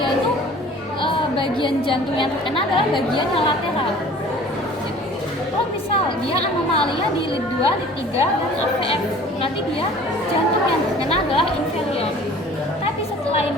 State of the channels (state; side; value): normal; both; correlation 0.48